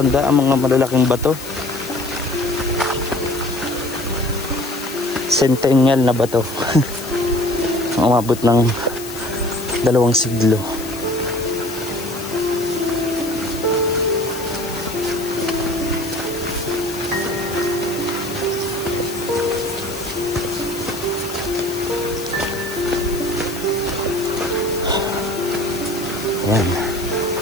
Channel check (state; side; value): noise; left; hiss, 13 dB below the sound